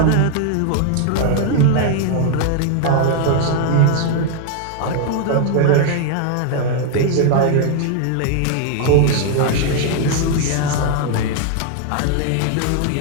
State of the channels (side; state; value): both; different; correlation 0.00